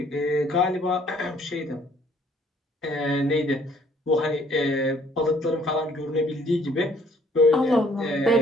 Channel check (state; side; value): normal; both; correlation 0.61